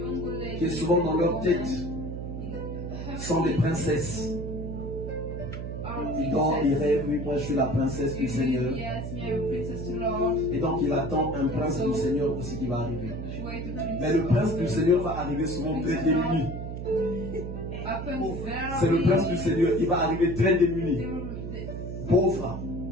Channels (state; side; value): noise; right; hum, 6 dB below the sound